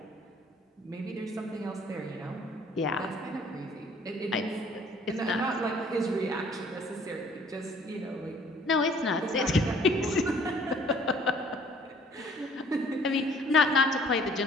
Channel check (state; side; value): normal; both; correlation 0.57